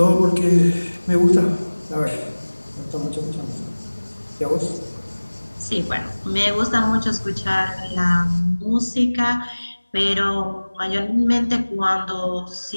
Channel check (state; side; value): inverted; both; correlation -1.00